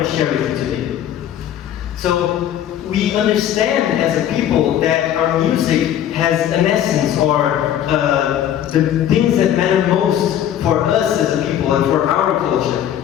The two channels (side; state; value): right; quieter; 10.7 dB